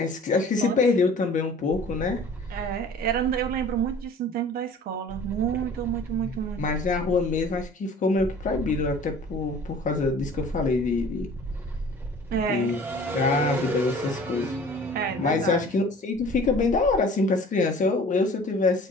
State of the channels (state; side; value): normal; both; correlation 0.47